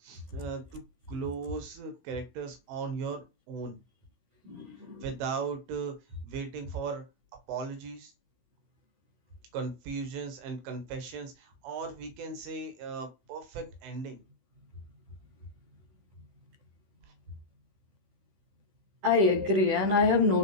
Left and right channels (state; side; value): late; left; 16 ms